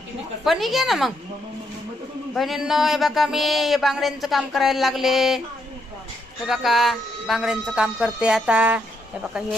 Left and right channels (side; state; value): both; normal; correlation 0.77